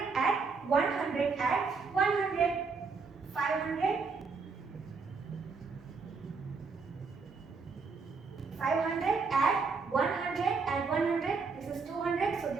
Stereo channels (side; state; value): left; quieter; 4.7 dB